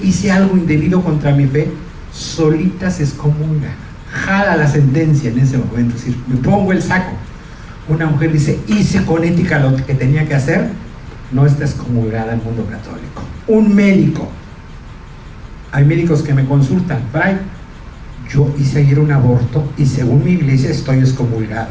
hice algo indebido contra mi fe, solita se excomulga, jala la sentencia en ese momento, es decir, me pongo el saco. Una mujer dice, hice con ética lo que tenía que hacer, no está excomulgada en el mundo católico. Un médico, hay médicos que me consultan, Fray, yo hice ayer un aborto y según mi iglesia estoy excomulgada.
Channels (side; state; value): both; identical; correlation 1.00